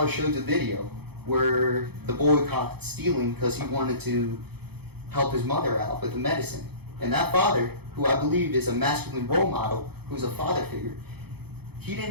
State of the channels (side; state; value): left; late; 0.97 ms